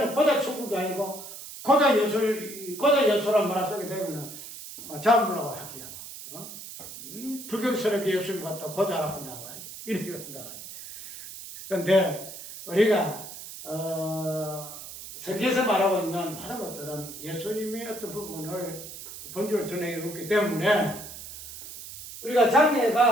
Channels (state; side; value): noise; right; hiss, 12 dB below the sound